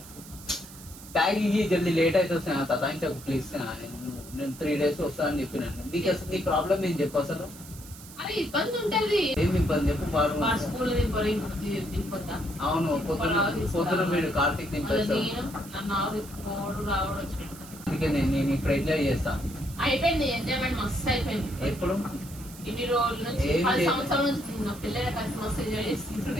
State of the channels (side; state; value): right; noise; hiss, 17 dB below the sound